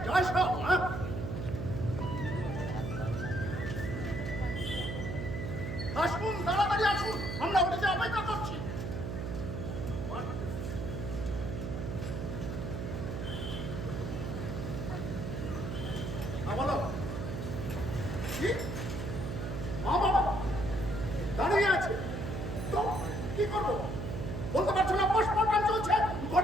যায় সব? আসুন, তাড়াতাড়ি আসুন, আমরা ওটাতে অপেক্ষা করছি। বলো কি? মা বাবা দাঁড়িয়ে আছে তো কি করবো বলতে পারছো না? পোস্টমর্টম চলছে,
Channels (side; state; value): right; noise; hum, 4 dB below the sound